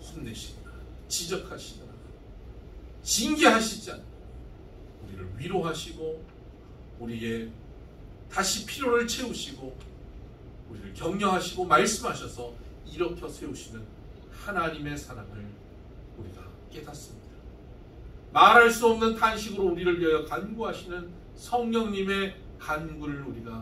혼내시거나 지적하시거나 징계하시지 않고 우리를 위로하시고 우리의 다시 필요를 채우시고 우리를 격려하시고 말씀하셔서 일으켜 세우시는 하나님의 사랑을 우리가 깨닫습니다. 말할 수 없는 탄식으로 우리를 위하여 간구하시는 성령님의 간구를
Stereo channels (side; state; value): both; identical; correlation 1.00